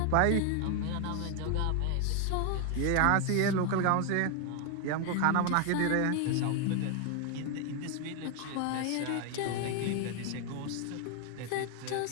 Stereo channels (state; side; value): different; both; correlation 0.00